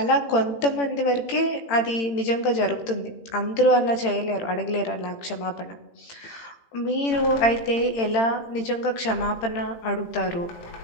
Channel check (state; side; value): late; right; 18 ms